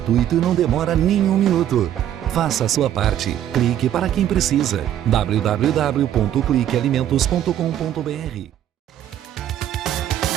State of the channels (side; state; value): left; quieter; 11.2 dB